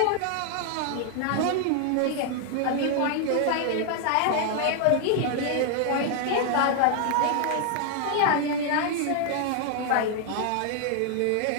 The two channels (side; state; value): both; different; correlation 0.00